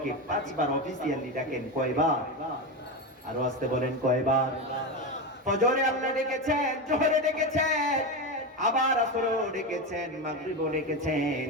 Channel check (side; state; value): both; normal; correlation 0.16